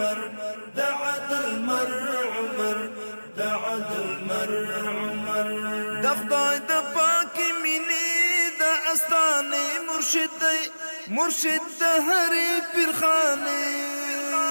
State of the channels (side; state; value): both; inverted; correlation -1.00